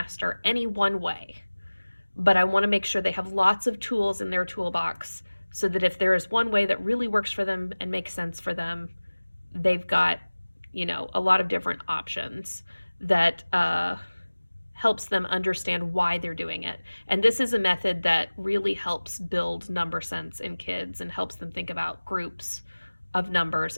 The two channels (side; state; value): both; inverted; correlation -1.00